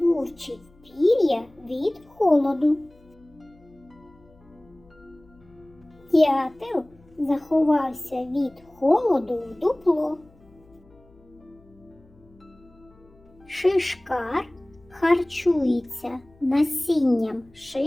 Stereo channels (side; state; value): left; noise; hum, 29 dB below the sound